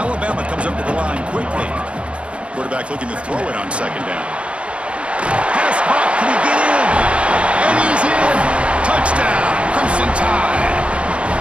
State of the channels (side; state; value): left; late; 0.060 ms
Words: comes up to the line quickly. Quarterback looking to throw it on 2nd down. Pass caught, can he get in? And he's in! Touchdown, Crimson Tide!